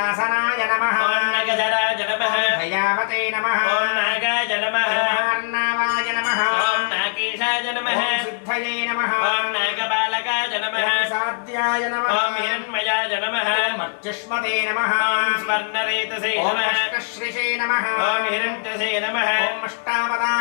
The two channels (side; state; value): right; silent; 65 dB below the other